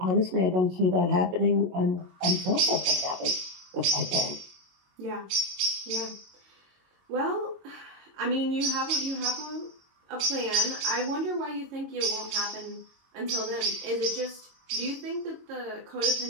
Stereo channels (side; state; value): left; late; 22 ms